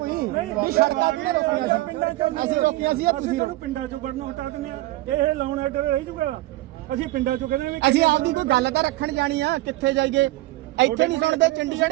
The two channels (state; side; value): quieter; left; 17.9 dB